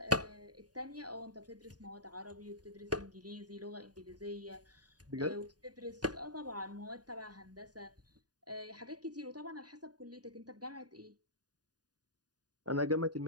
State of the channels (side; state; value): left; late; 0.68 ms